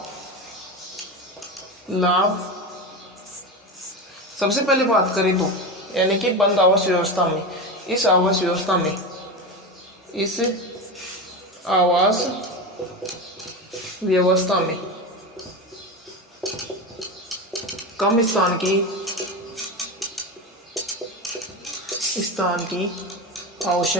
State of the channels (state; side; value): normal; both; correlation 0.21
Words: सबसे पहले बात करें तो, यानी कि बंद आवास व्यवस्था में, इस आवास व्यवस्था में, इस आवास व्यवस्था में कम स्थान की